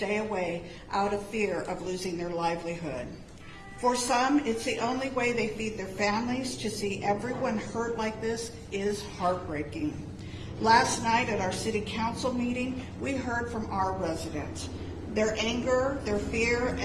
away out of fear of losing their livelihood. For some, it's the only way they feed their families. To see everyone hurt like this is heartbreaking. Last night at our city council meeting, we heard from our residents. Their anger, their fear,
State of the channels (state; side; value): identical; both; correlation 1.00